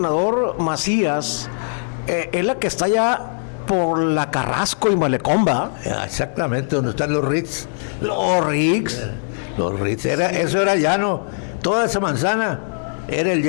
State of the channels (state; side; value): silent; right; digital silence